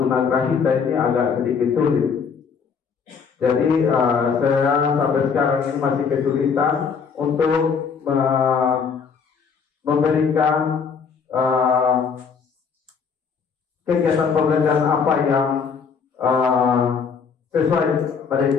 tunagrahita ini agak sedikit sulit. Jadi saya sampai sekarang ini masih kesulitan untuk memberikan kegiatan pembelajaran apa yang sesuai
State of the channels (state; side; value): quieter; right; 6.0 dB